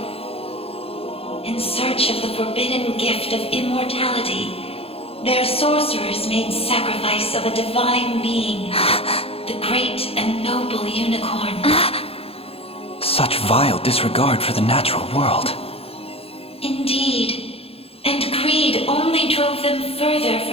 In search of the forbidden gift of immortality, their sorcerers made sacrifice of a divine being, the great and noble unicorn. Such vile disregard for the natural world. Indeed, and greed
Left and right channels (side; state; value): right; late; 0.28 ms